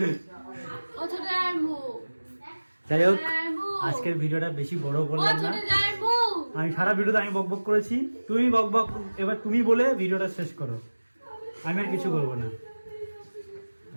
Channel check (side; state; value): both; inverted; correlation -1.00